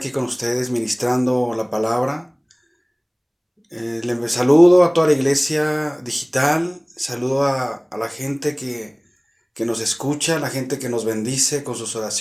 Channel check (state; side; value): identical; both; correlation 1.00